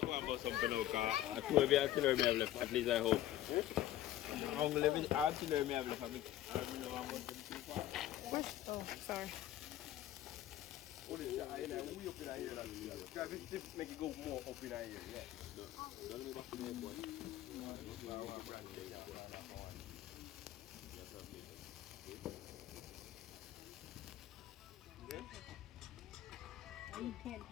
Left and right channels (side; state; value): right; quieter; 13.4 dB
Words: going to bust something out because I told you artillery may have left, at least I hope. I'm going to leave artillery may have left. I don't know how much them too far. Oh, sorry. Make it go more up in here, yeah. You can't